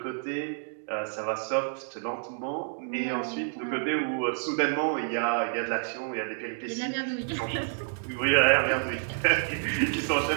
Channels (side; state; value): left; silent; digital silence